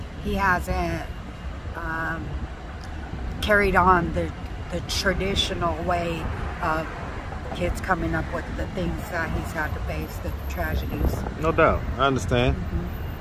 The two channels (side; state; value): both; identical; correlation 1.00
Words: he hasn't carried on the traditional way of kids coming up with the things that he's had to face, the tragedies. No doubt. I understand.